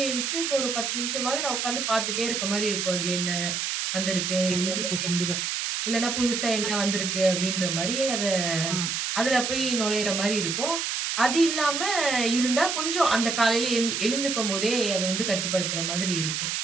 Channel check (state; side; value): noise; right; hiss, 1 dB below the sound